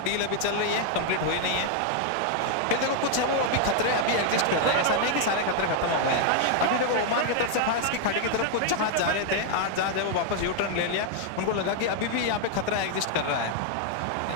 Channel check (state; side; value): different; both; correlation 0.00